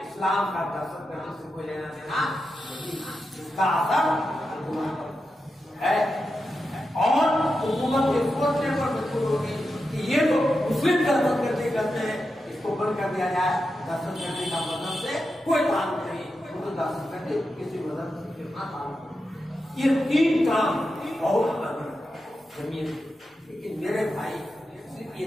इस्लाम का दहशतगर्दी से कोई लेना देना नहीं, इसका असर है। और हुकूमत के सोचने पर मजबूर होगी कि ये तो मुस्लिम दहशतगर्दी करते हैं, इसको बंद कर दिया जाए। दहशतगर्दी का मजहब से कोई ताल्लुक नहीं, तो दहशतगर्दी किसी मजहब से कितना ताल्लुक नहीं। ये 3 काम बहुत जमीन, लेकिन मेरे भाई सिर्फ ये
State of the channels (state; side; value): normal; both; correlation 0.89